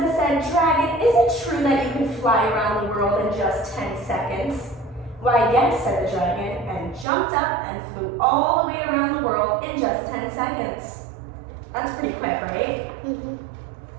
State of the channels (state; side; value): drops out; left; at 7.1 s